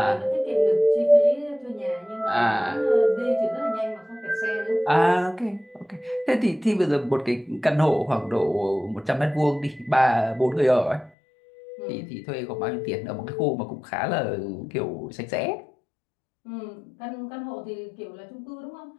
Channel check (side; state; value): right; drops out; at 11.1 s